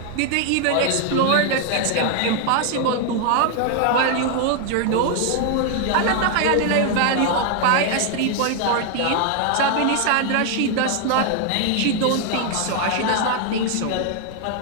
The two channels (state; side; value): different; both; correlation 0.00